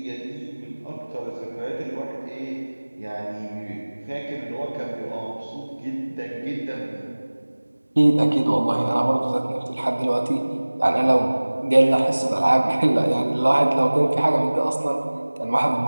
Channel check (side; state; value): both; inverted; correlation -1.00